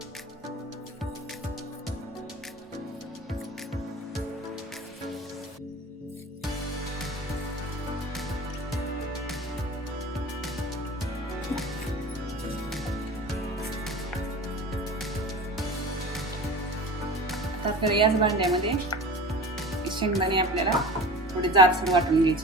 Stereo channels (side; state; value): both; normal; correlation 0.36